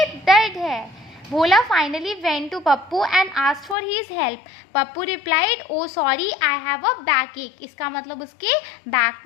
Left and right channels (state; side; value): drops out; right; at 3.8 s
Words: दर्द है। Bhola finally went to Pappu and asked for his help. Pappu replied, oh sorry, I have a backache, इसका मतलब उसके बैक